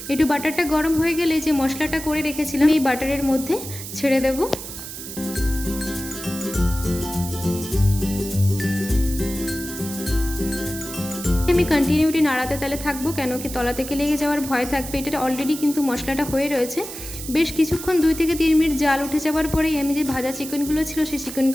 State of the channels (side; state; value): right; noise; hiss, 10 dB below the sound